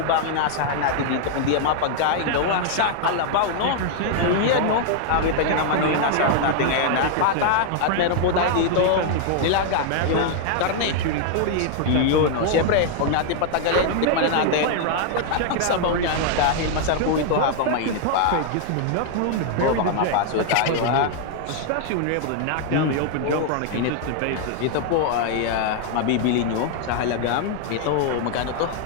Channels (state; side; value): different; both; correlation 0.00